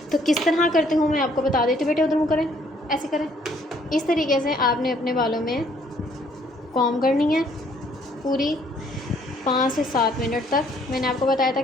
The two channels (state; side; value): normal; both; correlation 0.64